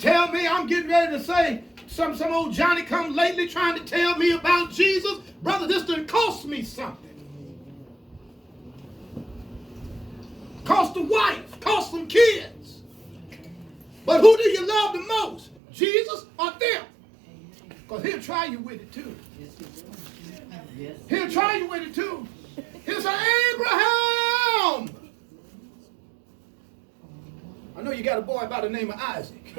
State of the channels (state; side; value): drops out; left; at 15.6 s